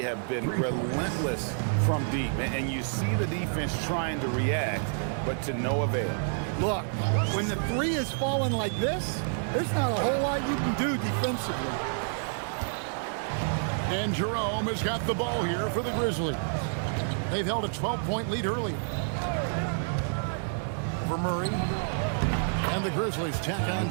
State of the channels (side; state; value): left; silent; digital silence